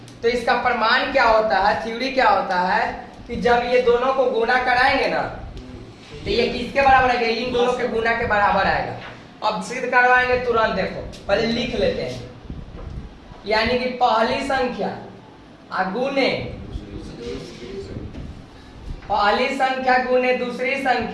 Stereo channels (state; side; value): identical; both; correlation 1.00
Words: तो इसका प्रमाण क्या होता है, थ्योरी क्या होता है कि जब ये दोनों को गुना कराएंगे ना तो ये किसके बराबर आएगा, इन दोनों के गुना के बराबर आएगा। अब सिद्ध करवाएंगे तुरंत, देखो पहले लिख लेते हैं। यानी कि पहली संख्या गुने, पहली संख्या गुने दूसरी